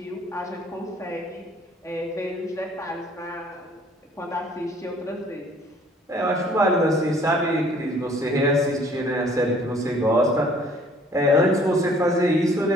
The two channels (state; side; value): normal; both; correlation 0.56